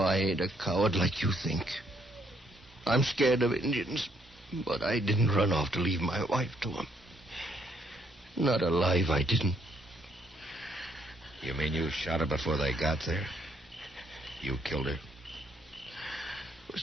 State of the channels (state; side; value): normal; both; correlation 0.70